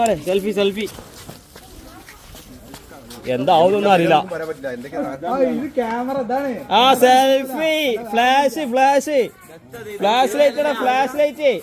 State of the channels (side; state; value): both; identical; correlation 1.00